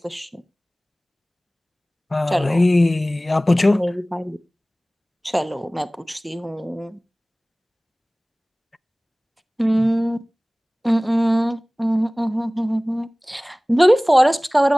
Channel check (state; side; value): normal; both; correlation 0.98